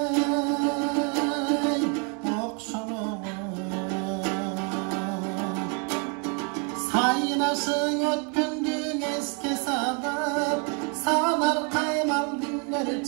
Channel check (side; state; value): left; quieter; 36.4 dB